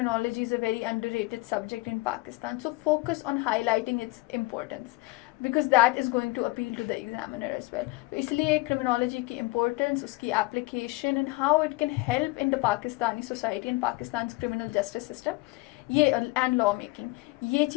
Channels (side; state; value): right; quieter; 22.3 dB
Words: is a very underrated subject in Pakistan. So focus on highlighting its importance, because that is going to appeal to the examiner as well. तो इसलिए criminology की importance, उसकी application and how it can help in the Pakistani society and Pakistan's criminal justice system, ये and law making, ये